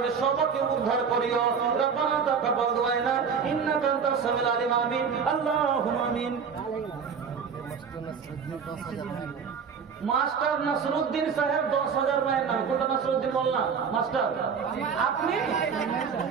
সবাইকে উদ্ধার করিও। রব্বানা তাকাব্বাল দুআনা ইন্নাকা আনতাস সামিউল আলিম। আমিন আল্লাহুম্মা আমিন। মাস্টার নাসরুদ্দিন সাহেব 10,000 মায়ের নাম। কোনটা নাসরুদ্দিন বললাম মাস্টার? আপনি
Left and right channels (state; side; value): quieter; left; 6.3 dB